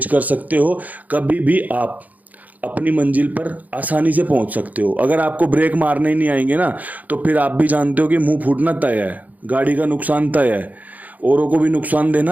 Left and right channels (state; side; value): late; left; 0.079 ms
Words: कर सकते हो, कभी भी आप अपनी मंजिल पर आसानी से पहुंच सकते हो। अगर आपको ब्रेक मारने ही नहीं आएंगे ना तो फिर आप भी जानते हो कि मुंह फूटना तय है, गाड़ी का नुकसान तय है, औरों को भी नुकसान